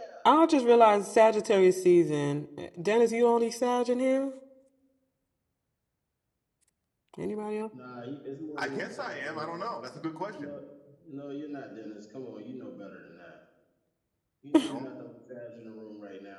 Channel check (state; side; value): identical; both; correlation 1.00